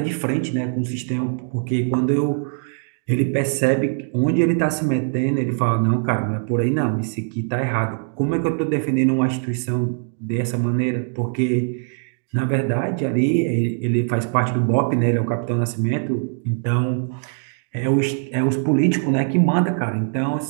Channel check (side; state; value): left; silent; 65 dB below the other